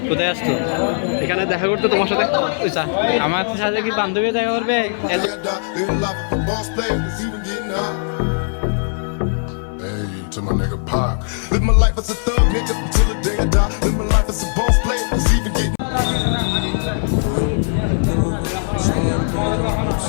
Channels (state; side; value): silent; right; 66 dB below the other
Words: কোথায় আসতো? এখানে দেখা করতে তোমার সাথে? আমার সাথে কি বান্ধবী দেখা করবে? To my nigga Pac. Live my life as a thug nigga until the day I die. Live my life as a boss player, it's even getting.